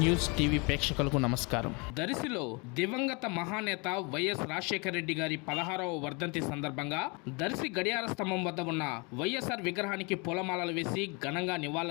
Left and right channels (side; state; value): right; quieter; 30.4 dB